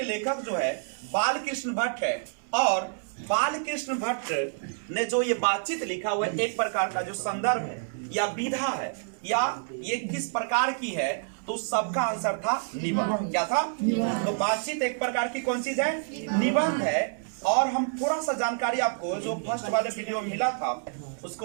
लेखक जो है बालकृष्ण भट्ट है। और बालकृष्ण भट्ट ने जो ये बातचीत लिखा हुआ है एक प्रकार का जो संदर्भ है या विधा है या ये किस प्रकार की है, तो सबका आंसर था निबंध। क्या था? तो बातचीत एक प्रकार की कौन चीज है? निबंध है। और हम थोड़ा सा जानकारी आपको जो फर्स्ट वाले वीडियो में मिला था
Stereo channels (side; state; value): left; silent; 59 dB below the other